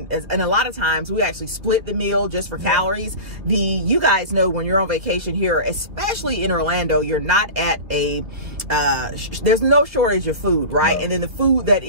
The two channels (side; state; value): left; late; 2.0 ms